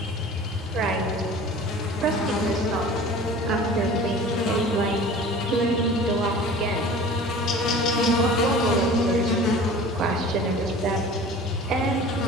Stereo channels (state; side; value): normal; both; correlation 0.42